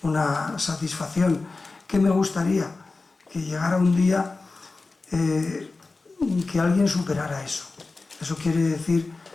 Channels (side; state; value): right; quieter; 3.7 dB